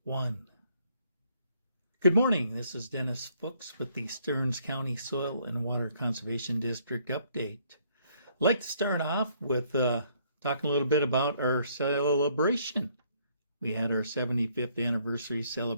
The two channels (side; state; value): both; inverted; correlation -0.67